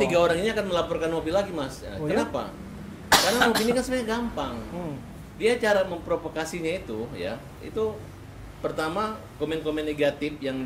3 orang ini akan melaporkan Nopi lagi, Mas. Oh, kenapa? Karena Nopi ini kan sebenarnya gampang. Dia cara memprovokasinya itu ya, itu pertama komen-komen negatif yang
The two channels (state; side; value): identical; both; correlation 1.00